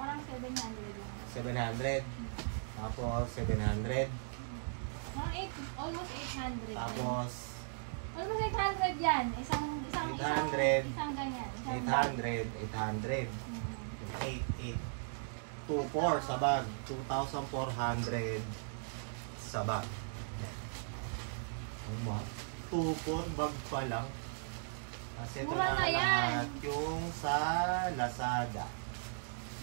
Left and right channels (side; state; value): left; silent; digital silence